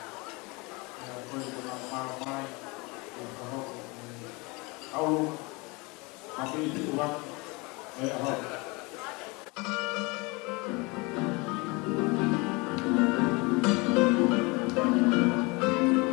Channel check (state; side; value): quieter; right; 26.7 dB